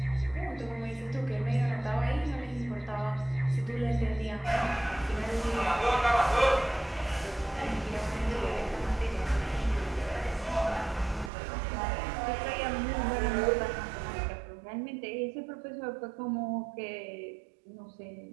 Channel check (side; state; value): left; drops out; at 11.3 s